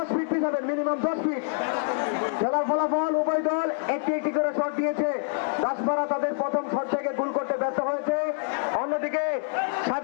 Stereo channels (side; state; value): right; silent; digital silence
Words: fit পিছাবেন, minimum 10 fit. খেলার ফলাফল উভয় দল একটি একটি করে শট দিয়েছে। দাসপাড়া তাদের প্রথম শট থেকে গোল করতে ব্যর্থ হয়েছে। অন্যদিকে